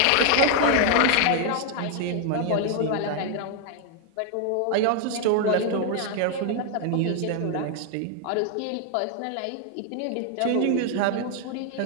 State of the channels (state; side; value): different; both; correlation 0.00